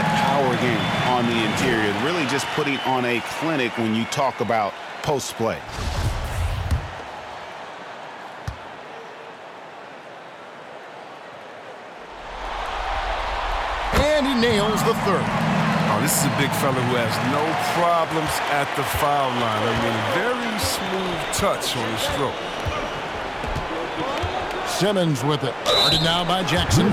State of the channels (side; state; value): both; identical; correlation 1.00